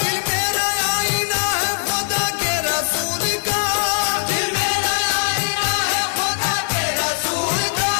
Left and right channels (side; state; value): right; silent; digital silence